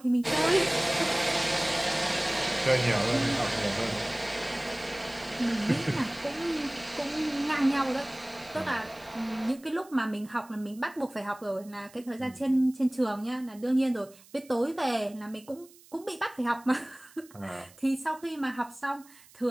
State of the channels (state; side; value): noise; right; hiss, 24 dB below the sound